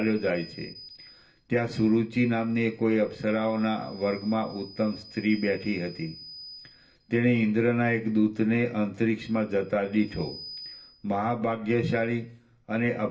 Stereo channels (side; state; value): both; identical; correlation 1.00